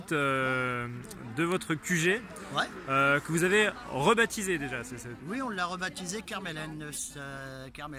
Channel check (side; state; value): both; identical; correlation 1.00